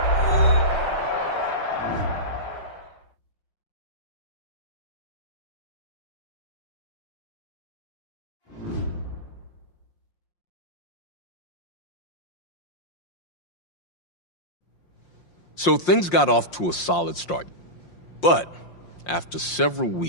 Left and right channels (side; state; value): right; late; 5.7 ms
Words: So things got off to a solid start. But after several